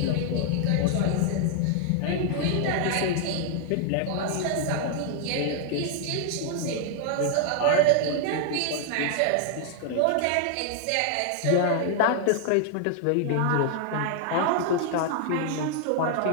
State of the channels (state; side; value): different; both; correlation 0.00